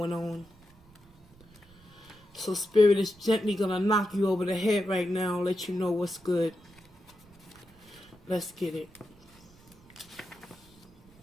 on. So Spirit is gently going to knock you over the head right now and let you know what's good. Let's get it.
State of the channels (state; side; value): noise; right; rumble, 27 dB below the sound